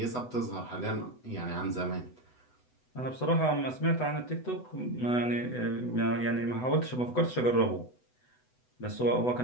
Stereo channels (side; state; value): right; late; 8.0 ms